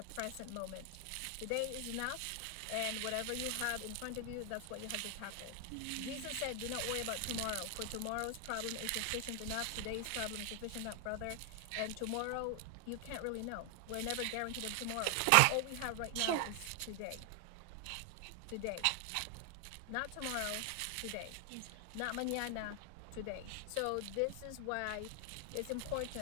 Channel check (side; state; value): both; different; correlation 0.00